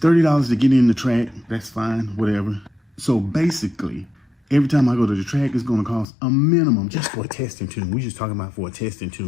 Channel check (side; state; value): right; drops out; at 6.1 s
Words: to get in the track. That's fine, whatever. So basically, every time I go to the track, it's gonna cost a minimum just for a testing tune. We're just talking about for a testing